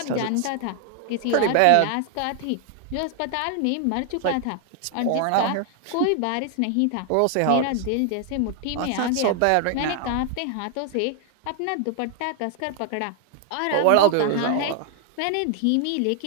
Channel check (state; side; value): different; both; correlation 0.00